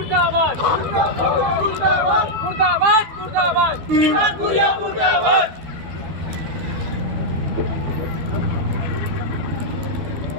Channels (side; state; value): left; late; 12 ms